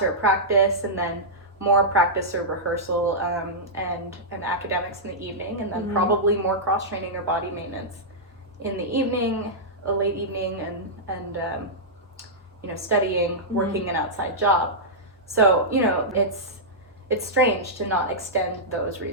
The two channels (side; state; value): both; normal; correlation -0.11